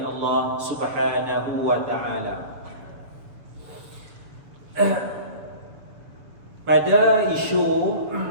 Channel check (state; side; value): late; left; 7.0 ms